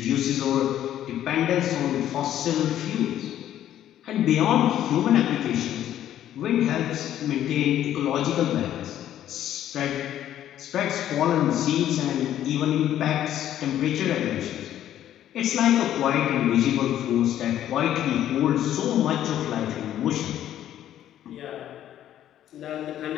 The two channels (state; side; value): quieter; right; 11.6 dB